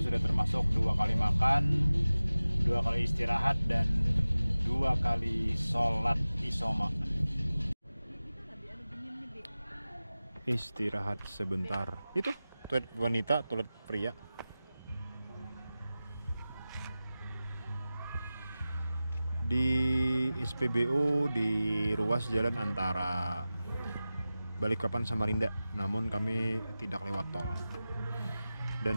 sudah termasuk 2 kali makan, 2 kali istirahat, dan 2 kali sholat isoma. Istirahat sebentar. Itu toilet wanita, toilet pria. Di SPBU di ruas jalan antara Balikpapan Samarinda, namun kami tidak lewat tol.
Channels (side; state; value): both; inverted; correlation -0.96